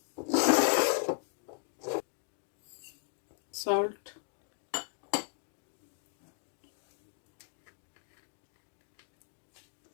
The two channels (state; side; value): silent; right; 53 dB below the other